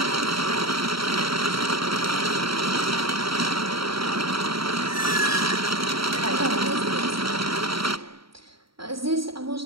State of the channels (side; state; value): left; late; 0.75 ms